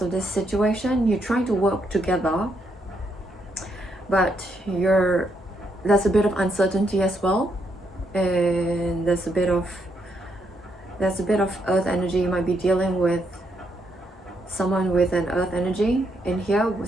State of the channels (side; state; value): both; normal; correlation 0.77